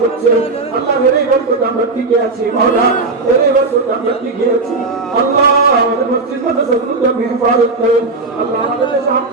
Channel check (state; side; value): quieter; left; 3.7 dB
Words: হচ্ছে আল্লাহ এই বরকতে আমরা টিকে আছি মাওলা এই বরকতে আমরা টিকে আছি আল্লাহ আমাদের মসজিদ মাদ্রাসাগুলোকে হেফাজত করেন আল্লাহ আমাদের